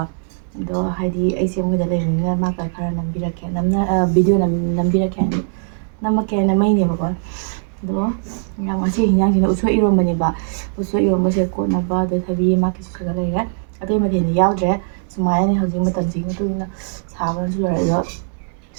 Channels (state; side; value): silent; left; digital silence